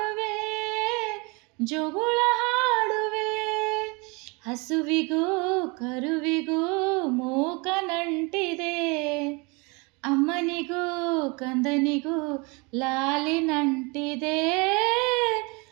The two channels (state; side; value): quieter; left; 28.7 dB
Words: ಜೋಗುಳ ಹಾಡುವೆ. ಹಸುವಿಗೂ ಕರುವಿಗೂ ಮೂಕ ನಂಟಿದೆ, ಅಮ್ಮನಿಗೂ ಕಂದನಿಗೂ ಲಾಲಿ ನಂಟಿದೆ.